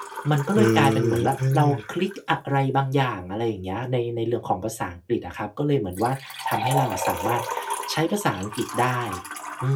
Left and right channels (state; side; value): identical; both; correlation 1.00